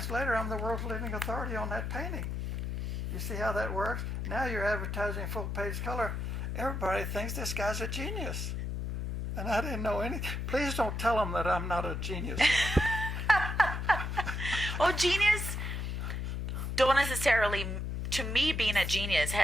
later, I'm the world's living authority on that painting. You see how that works? Now you're advertising full-page color. Everybody thinks this guy's a genius. And I didn't know any. Please don't tell them that I'm not a genius. Well, genius don't necessarily, to me, being a genius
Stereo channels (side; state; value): left; noise; hum, 3 dB below the sound